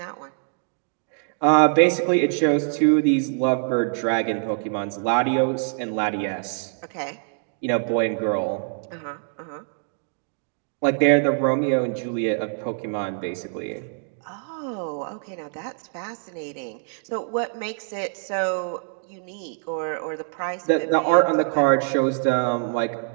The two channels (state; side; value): silent; left; digital silence